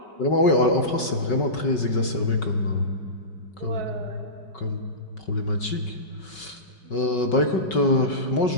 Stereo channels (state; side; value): late; right; 5.3 ms